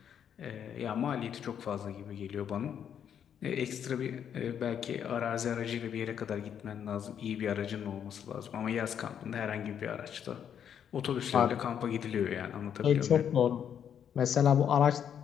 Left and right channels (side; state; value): right; quieter; 8.7 dB